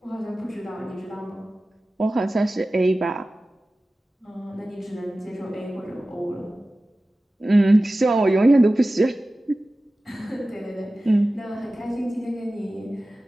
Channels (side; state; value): both; normal; correlation 0.96